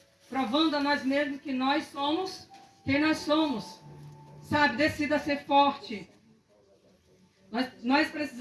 Provando a nós mesmos que nós somos quem nós somos. Sabe, decida ser forte. Nós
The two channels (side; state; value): both; identical; correlation 1.00